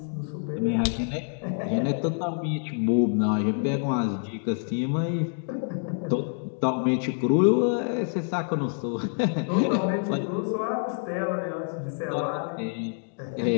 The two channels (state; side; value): silent; right; 60 dB below the other